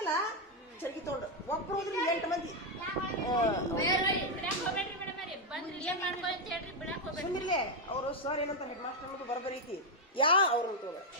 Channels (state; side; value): normal; both; correlation 0.03